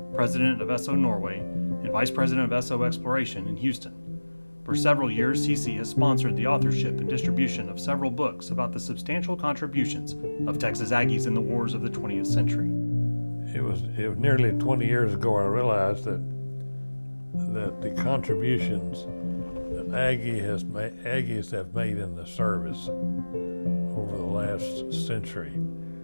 President of Esso Norway, and Vice President of Esso Exploration in Houston. For several years, CC has sponsored the authorship and distribution of several books about the substantial contributions of Texas Aggies in the wars of the 20th century. It was nearly 20 years ago I realized that the contributions that Aggies have made in the service over the last century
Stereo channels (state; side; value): inverted; both; correlation -1.00